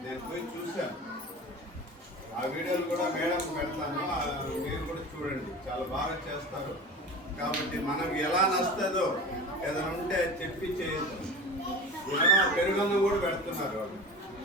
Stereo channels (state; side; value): normal; both; correlation 0.33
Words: నేను పోయి చూశాను. ఆ వీడియోలు కూడా మేడం పెడతాను, మీరు కూడా చూడండి. చాలా బాగా చేస్తారు. కాబట్టి మనకు ఎలా నస్తుందో ఏదైనా ఉంటే చెప్పి చేయొచ్చు. పెరుగన్నం కూడా పెడుతున్నారు వాళ్ళు,